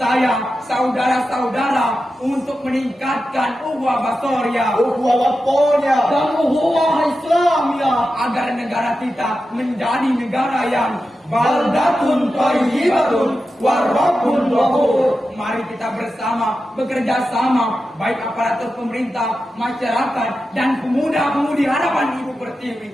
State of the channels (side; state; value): both; normal; correlation 0.91